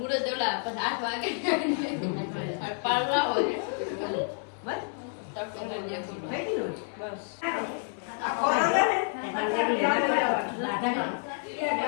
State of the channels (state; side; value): silent; right; 55 dB below the other